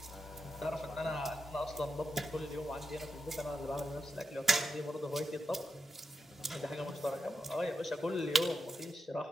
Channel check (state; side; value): normal; both; correlation 0.86